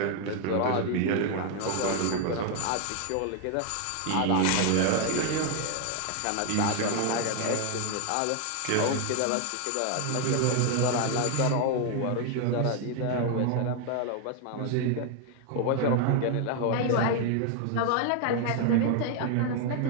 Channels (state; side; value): different; both; correlation 0.01